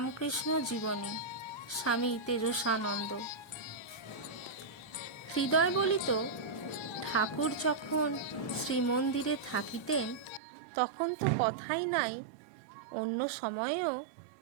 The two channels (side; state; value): left; drops out; at 10.4 s